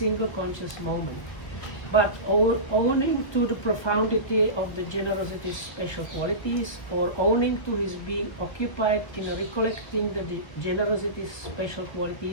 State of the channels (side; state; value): right; late; 1.3 ms